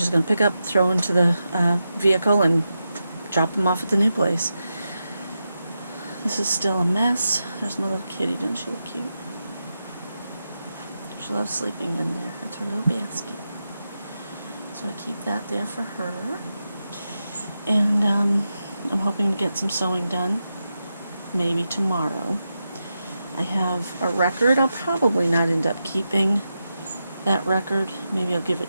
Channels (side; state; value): both; inverted; correlation -0.89